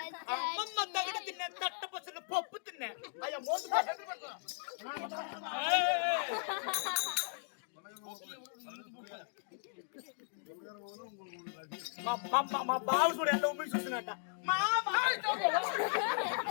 அம்மம்மா தவிட தின்ன தட்ட பசங்க பப்பு தின்ன ஐயா மோச మా బావ కూడా ఎలా ఊపి చూస్తున్నట్ట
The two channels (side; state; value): right; silent; digital silence